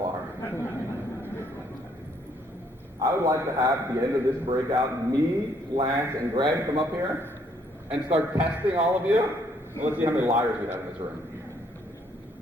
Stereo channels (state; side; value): normal; both; correlation 0.67